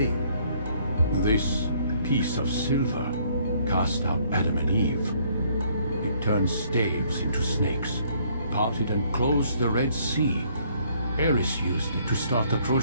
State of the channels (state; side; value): inverted; both; correlation -0.64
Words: This piece of silver cast out Adam and Eve. It turned staves into snakes, parted and closed the Red Sea. Eris used it to start the